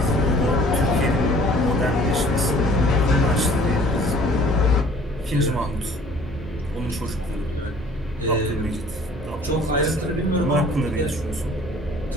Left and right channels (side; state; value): both; normal; correlation 0.52